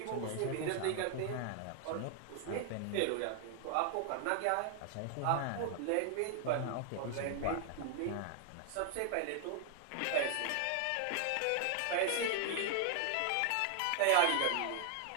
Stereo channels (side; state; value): both; different; correlation 0.00